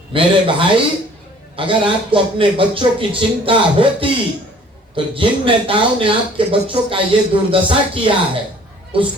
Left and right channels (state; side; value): normal; both; correlation 0.54